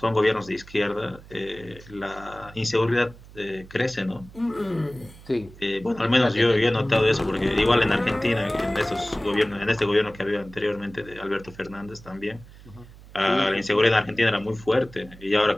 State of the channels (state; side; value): noise; right; hum, 20 dB below the sound